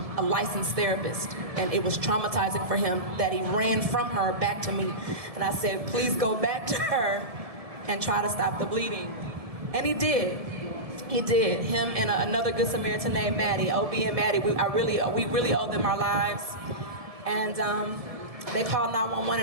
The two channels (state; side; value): late; left; 1.7 ms